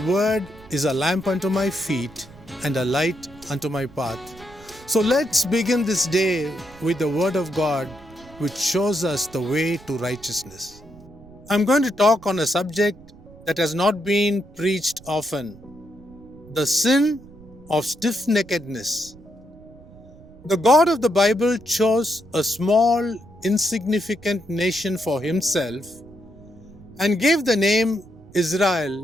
word is a lamp unto my feet and a light unto my path." So let's begin this day with the word of God, which shows us the way to righteousness. I'm going to talk on a subject that has not been preached often: the sin of stiffneckedness. The God of the Bible chose a small, insignificant nation for himself and gave the name Israel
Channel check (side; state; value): right; noise; rumble, 22 dB below the sound